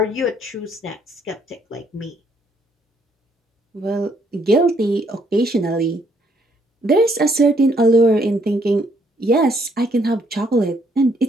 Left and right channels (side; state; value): both; normal; correlation 0.69